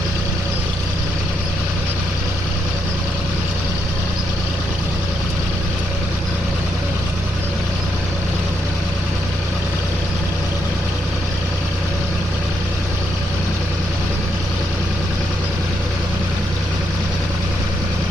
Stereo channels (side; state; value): both; normal; correlation 0.78